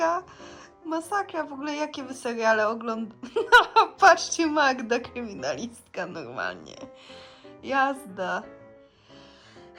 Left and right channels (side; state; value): both; identical; correlation 1.00